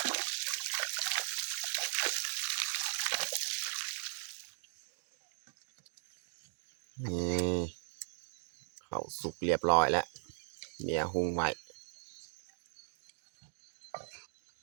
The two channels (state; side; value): silent; left; digital silence